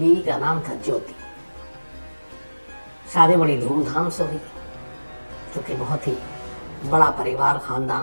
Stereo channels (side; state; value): both; inverted; correlation -1.00